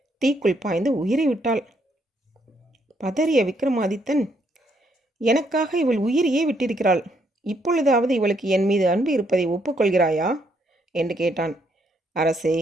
தீக்குள் பாய்ந்து உயிரை விட்டாள். பதறிய விக்ரமாதித்தன், எனக்காக இவள் உயிரையே விட்டிருக்கிறாள். இப்பொழுதாவது இவளுக்கு என் மீது அன்பு இருப்பதை ஒப்புக்கொள்கிறாயா என்று கேட்டான். அரசே,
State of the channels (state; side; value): normal; both; correlation 0.73